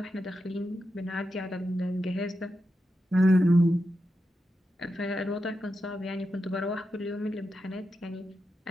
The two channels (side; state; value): both; normal; correlation 0.88